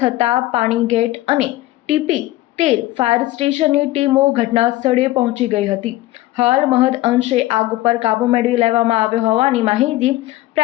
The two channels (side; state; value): right; quieter; 17.0 dB